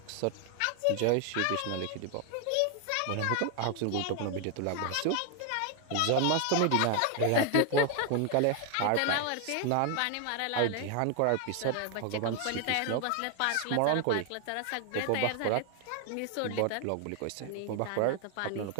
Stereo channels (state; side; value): different; both; correlation 0.00